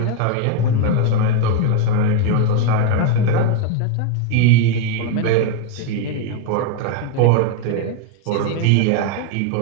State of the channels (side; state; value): both; different; correlation 0.01